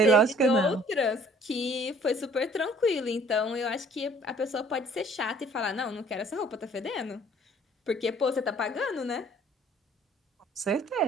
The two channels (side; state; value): both; normal; correlation 0.56